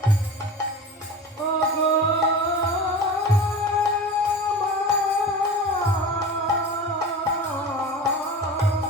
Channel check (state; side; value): normal; both; correlation 0.33